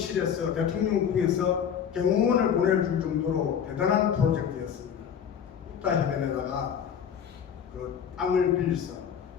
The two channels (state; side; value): quieter; right; 8.1 dB